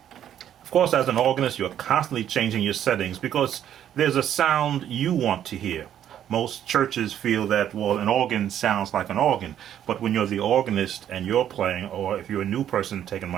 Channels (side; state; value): left; quieter; 10.4 dB